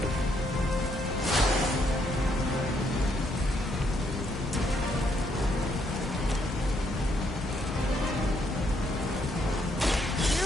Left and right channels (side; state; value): both; normal; correlation 0.73